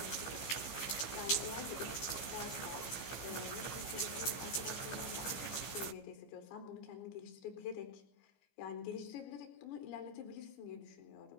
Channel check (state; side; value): late; right; 15 ms